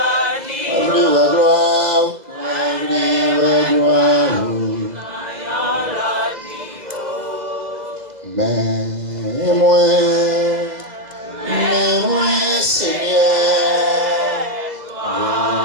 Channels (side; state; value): left; late; 2.0 ms